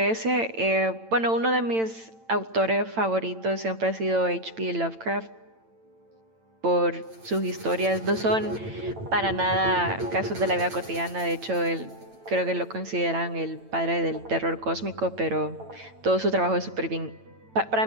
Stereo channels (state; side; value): late; left; 8.9 ms